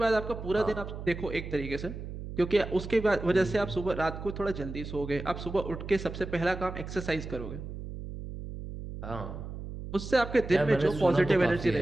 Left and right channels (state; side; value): noise; right; hum, 9 dB below the sound